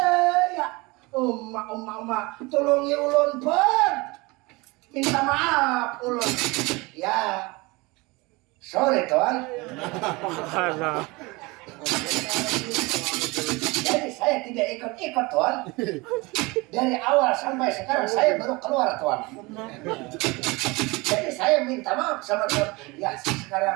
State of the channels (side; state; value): left; quieter; 24.4 dB